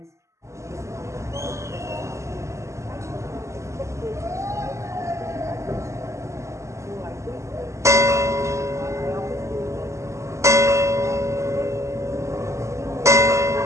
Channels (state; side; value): late; left; 0.14 ms